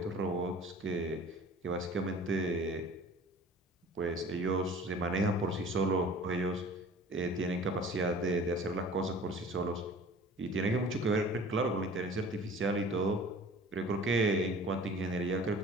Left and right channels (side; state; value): both; normal; correlation 0.45